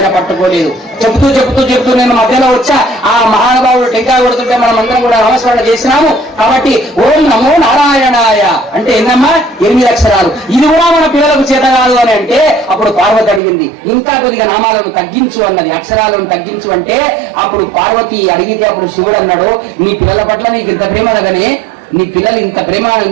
పట్టుకోలేదు. చెబుతూ నేను మధ్యలో వచ్చా, ఆ మహానుభావుడు టెంకాయ కొడుతుంటే మనం అందరం కూడా నమస్కరణ చేసినాము. కాబట్టి ఓం నమో నారాయణాయ అంటే ఏందమ్మా 8 అక్షరాలు. ఇది కూడా మన పిల్లలకు చేత కాదు అని అంటే అప్పుడు పార్వతి అడిగింది, ఇంకా కొద్దిగా నామాలను తగ్గించు అన్నది, అక్షరాలను తగ్గించు అంటే అప్పుడు పార్వతి అడిగితే అప్పుడు శివుడు అన్నాడు, నీ పిల్లల పట్ల నీకు ఇంత ప్రేమ అనగానే నీ పిల్లలు ఇంత ప్రేమ,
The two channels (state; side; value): drops out; left; at 13.4 s